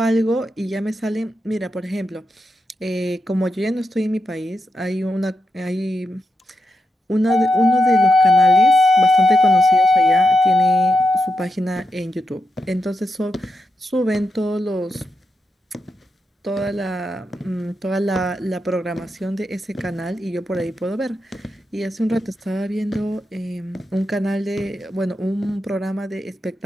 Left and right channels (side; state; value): both; normal; correlation 0.86